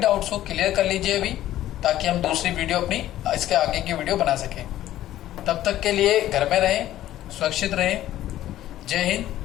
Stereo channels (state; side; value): quieter; right; 13.5 dB